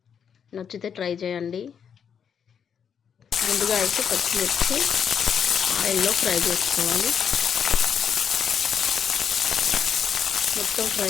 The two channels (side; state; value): right; quieter; 7.6 dB